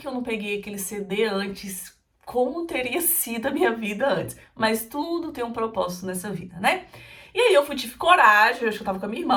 eu não peguei aquele CD antes? Como teria sido a minha vida antes? Mas tudo tem um propósito nessa vida, né? E aí eu tive coragem, eu acho que eu tava com a minha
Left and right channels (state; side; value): identical; both; correlation 1.00